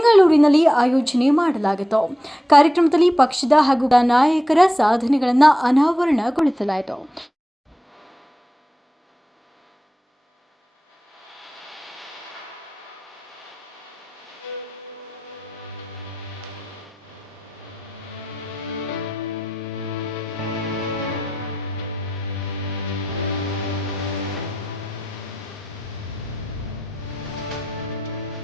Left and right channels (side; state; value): both; normal; correlation 0.90